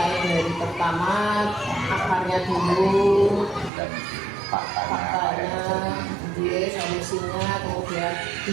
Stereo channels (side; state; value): left; drops out; at 3.7 s